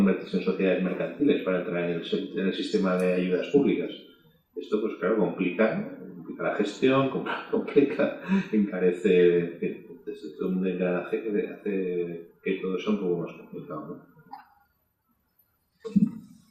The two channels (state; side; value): identical; both; correlation 1.00